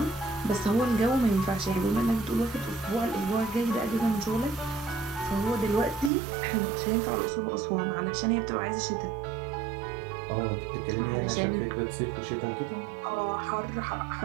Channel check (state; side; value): drops out; left; at 6.1 s